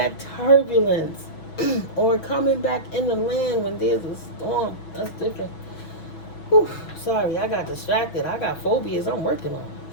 turbulence, or coming back in the land when there's a storm, that's different. Sorry, I got distracted. I got phobias I'm working on.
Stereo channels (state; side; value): late; right; 6.1 ms